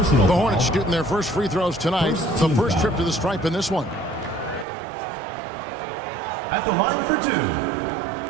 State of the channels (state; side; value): drops out; left; at 4.7 s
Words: The Hornets shooting their first free throws tonight. The first trip to the stripe in this one. At the line for two,